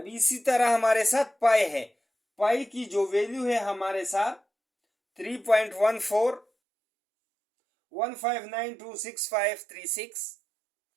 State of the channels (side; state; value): left; drops out; at 6.5 s